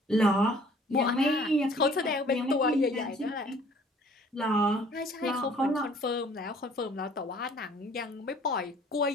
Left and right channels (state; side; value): normal; both; correlation 0.55